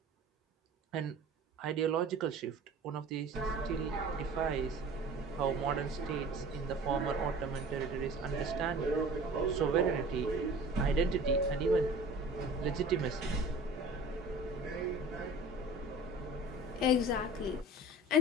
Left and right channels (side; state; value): both; normal; correlation 0.42